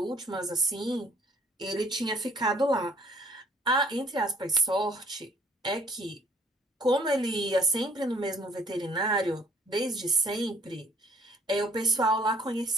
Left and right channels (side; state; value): both; normal; correlation 0.58